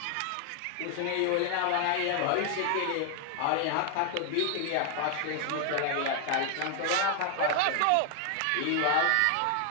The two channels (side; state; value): both; different; correlation 0.00